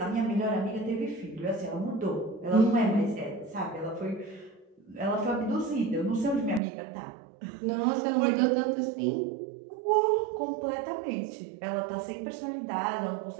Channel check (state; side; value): drops out; left; at 6.6 s